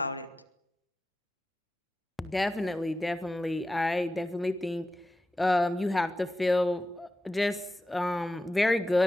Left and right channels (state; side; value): normal; both; correlation 0.92